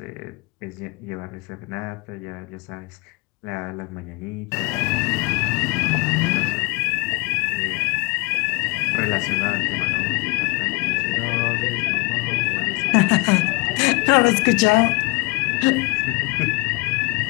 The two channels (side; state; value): right; quieter; 26.2 dB